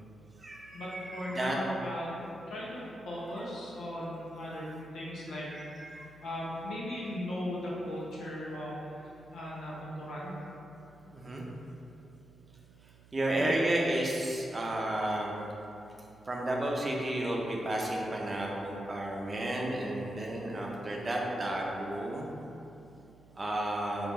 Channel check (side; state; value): right; noise; hum, 23 dB below the sound